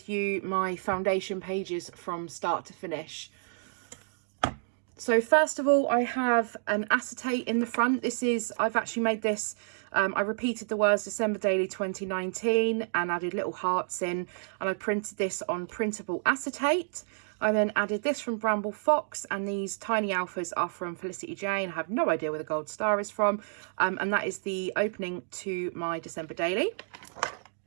you my foundation pages from start to finish. So first of all, I have an acetate in the front. I've actually made this, I repeated the words December Daily 2019 and added little hearts in, and I printed this on printable acetate. I then added this from Bramble Fox, and these tiny alphas are from Felicity Jane. I have no idea where the gold star is from, and that is the opening to my December Daily.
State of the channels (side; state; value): left; silent; digital silence